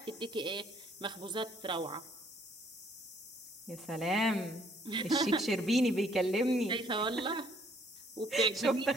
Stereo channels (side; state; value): both; normal; correlation 0.63